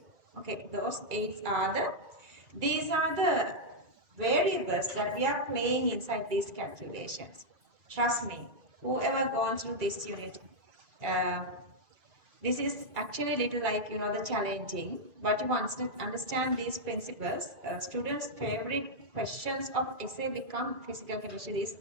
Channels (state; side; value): late; left; 2.2 ms